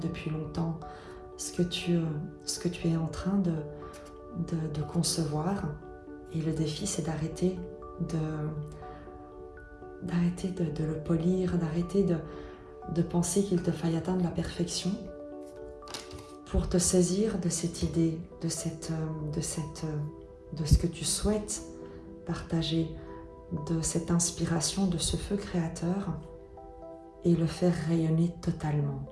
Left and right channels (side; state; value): both; identical; correlation 1.00